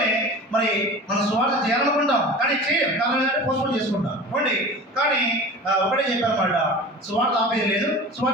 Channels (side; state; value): both; normal; correlation 0.36